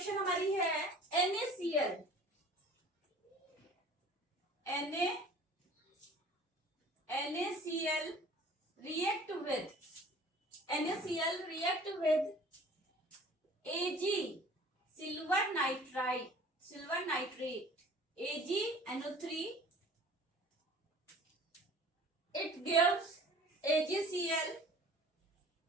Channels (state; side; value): normal; both; correlation 0.47